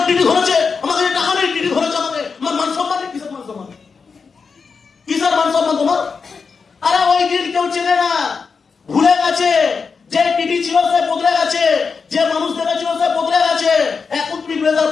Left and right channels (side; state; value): right; quieter; 5.3 dB